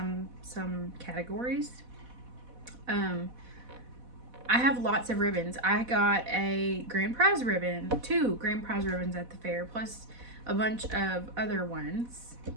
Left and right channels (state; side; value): late; left; 4.1 ms